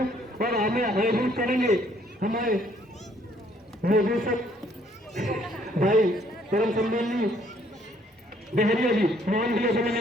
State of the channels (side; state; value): both; normal; correlation 0.64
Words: और हमें आयोजित करेंगे हमारे निर्देशक भाई परम सम्माननीय डहरिया जी मोहन जी से मैं